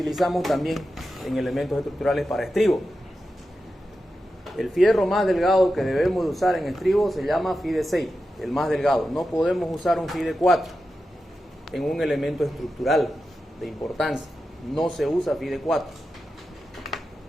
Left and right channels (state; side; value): normal; both; correlation 0.91